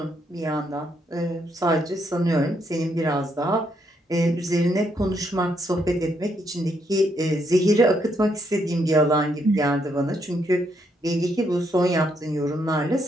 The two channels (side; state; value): both; normal; correlation 0.75